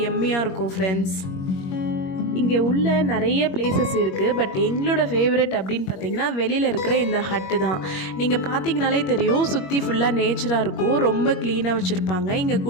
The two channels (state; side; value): late; right; 21 ms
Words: எம்மியாக இருக்கும் ஃப்ரெண்ட்ஸ். இங்கே உள்ள நிறைய பிளேசஸ் இருக்குது. பட் எங்களோட ஃபேவரட் அப்படின்னு பார்த்தீங்கன்னா வெளியில் இருக்கிற இந்த ஹட்டு தான். நீங்கள் பார்த்தீங்கனாலே தெரியும், சுற்றி ஃபுல்லாக நேச்சராக இருக்கும், ரொம்ப க்ளீனாக வச்சுருப்பாங்க. இங்கே